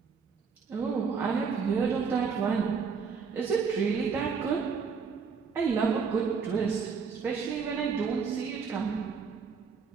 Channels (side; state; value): left; quieter; 5.7 dB